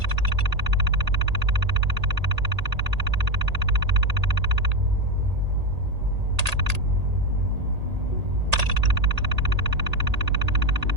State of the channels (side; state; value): left; late; 1.8 ms